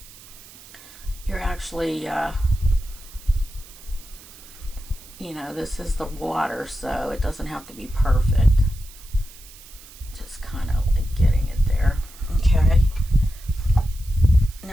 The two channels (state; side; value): noise; right; hiss, 20 dB below the sound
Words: you're actually, you know, this is the water, so it doesn't have to be perfect. Just kind of like getting it there. Okay.